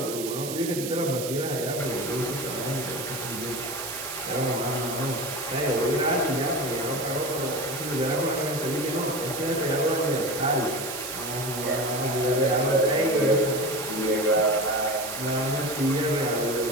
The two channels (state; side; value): noise; right; hiss, 7 dB below the sound